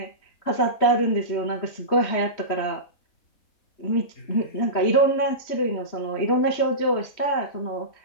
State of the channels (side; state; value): right; late; 3.2 ms